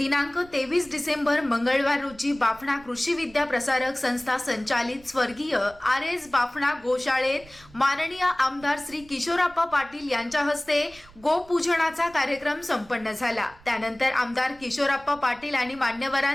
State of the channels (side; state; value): right; noise; rumble, 24 dB below the sound